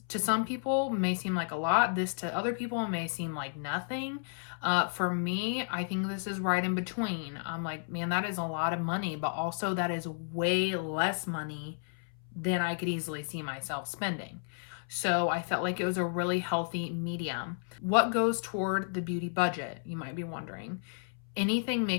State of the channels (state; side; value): silent; right; 56 dB below the other